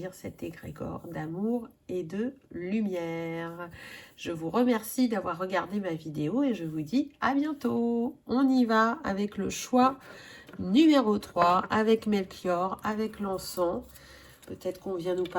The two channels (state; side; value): identical; both; correlation 1.00